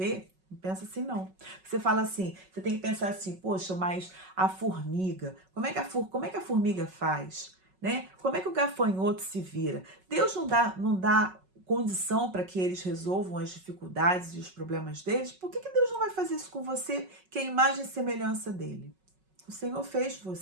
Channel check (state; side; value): late; left; 5.4 ms